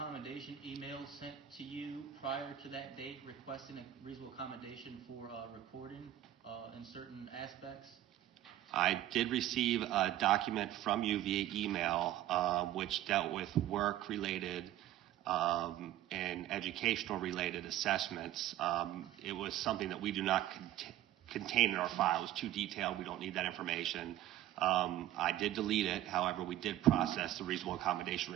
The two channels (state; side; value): quieter; left; 13.1 dB